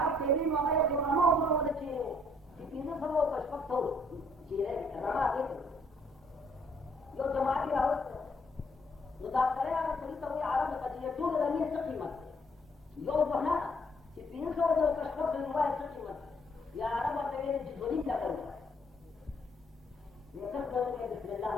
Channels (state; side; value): normal; both; correlation 0.66